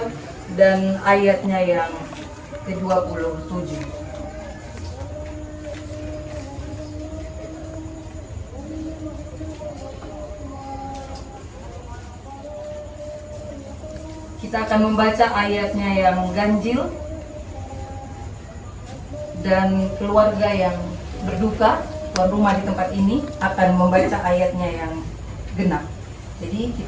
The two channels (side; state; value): both; identical; correlation 1.00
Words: Dan ayatnya yang ke-27. Kita akan membaca ayatnya yang ganjil, dan keluarga yang berduka, tuan rumah di tempat ini akan membaca ayatnya yang genap. Jadi